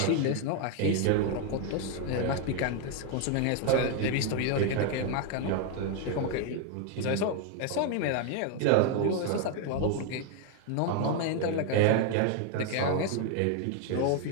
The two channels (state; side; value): different; both; correlation 0.01